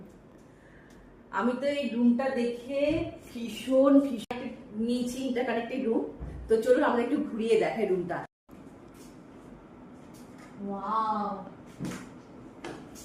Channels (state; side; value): identical; both; correlation 1.00